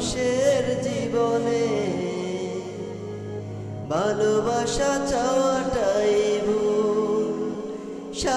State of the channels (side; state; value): both; identical; correlation 1.00